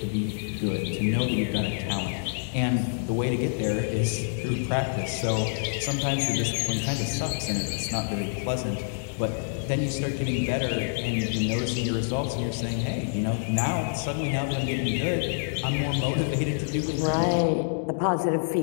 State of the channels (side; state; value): right; silent; digital silence